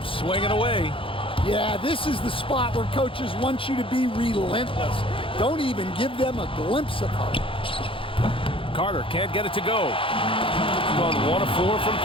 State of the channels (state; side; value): late; right; 0.26 ms